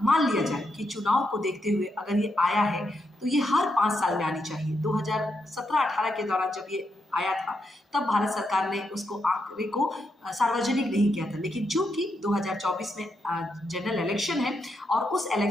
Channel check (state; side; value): normal; both; correlation 0.82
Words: मान लिया जाए कि चुनाव को देखते हुए अगर ये आया है तो ये हर 5 साल में आनी चाहिए। 2017-18 के दौरान जब ये आया था तब भारत सरकार ने उसको आंकड़े को सार्वजनिक नहीं किया था, लेकिन चूंकि 2024 में जनरल इलेक्शन है और उस